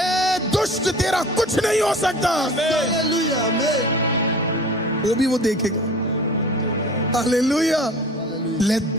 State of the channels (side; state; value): both; normal; correlation 0.42